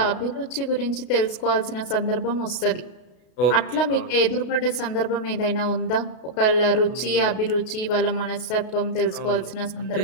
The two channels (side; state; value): right; late; 33 ms